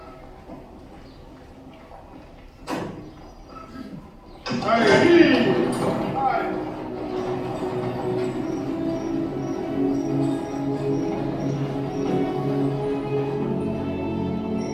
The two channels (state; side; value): identical; both; correlation 1.00